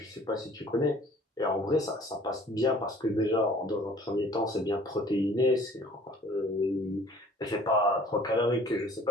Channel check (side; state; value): both; normal; correlation 0.50